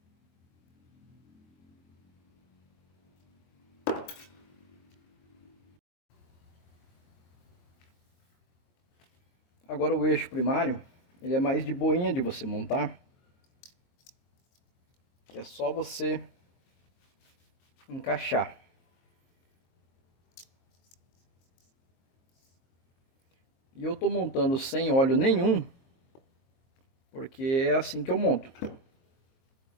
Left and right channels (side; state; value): right; late; 22 ms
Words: Agora o eixo primário, ele é mais de boinha de você montar. Que é só você encaixar. E eu tô montando sem óleo nenhum, porque é assim que eu monto.